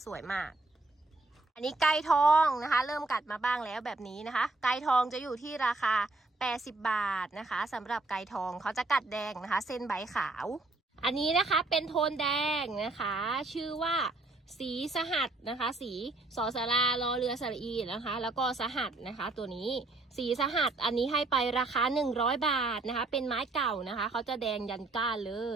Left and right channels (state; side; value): quieter; left; 3.1 dB